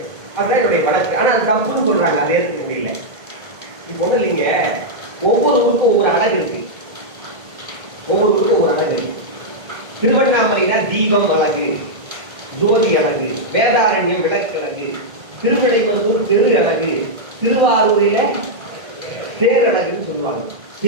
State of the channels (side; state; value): left; late; 1.8 ms